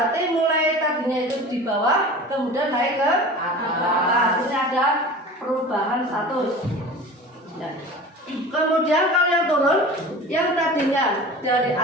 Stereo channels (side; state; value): both; normal; correlation 0.37